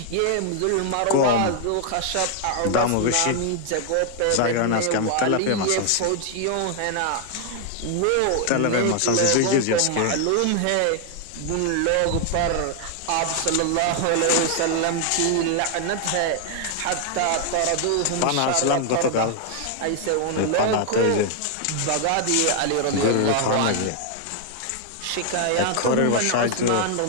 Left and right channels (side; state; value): both; different; correlation 0.00